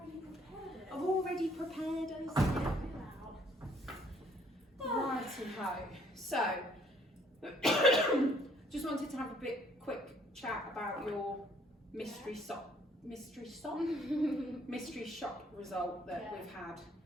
already prepared it. I've already prepared us. Righty-ho. So, just wanted to have a quick chat about your mystery shop result that we've had.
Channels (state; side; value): normal; both; correlation 0.63